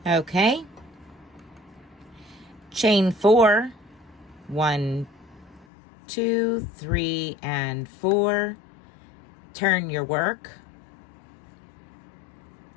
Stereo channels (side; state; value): right; drops out; at 5.7 s